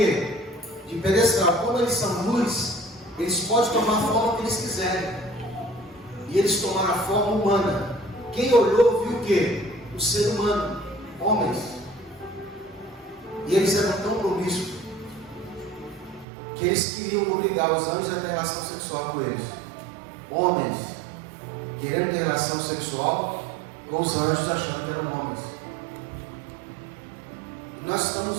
De pedestal. Como eles são luz, eles podem tomar a forma que eles quiserem. E eles tomaram a forma humana. Quem olhou viu o quê? O ser humano, homens. E eles eram tão promíscuos que eles queriam obrigar os anjos a ter relação sexual com eles. Homens querendo ter relação sexual com os anjos, achando que eram homens. E nós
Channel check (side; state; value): left; drops out; at 16.2 s